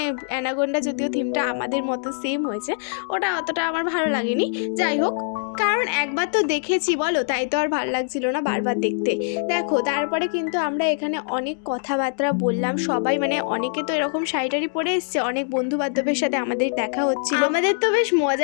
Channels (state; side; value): silent; right; digital silence